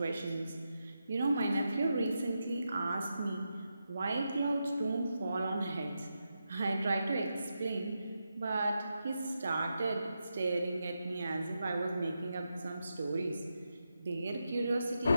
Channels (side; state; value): both; inverted; correlation -0.87